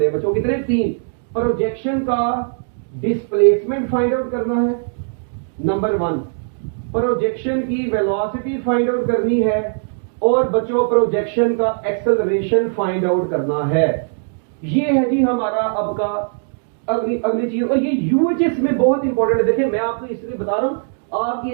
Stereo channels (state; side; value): silent; left; digital silence